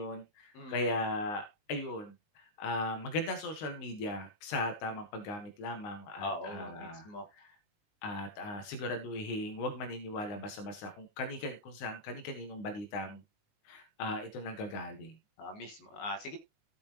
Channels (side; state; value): right; late; 19 ms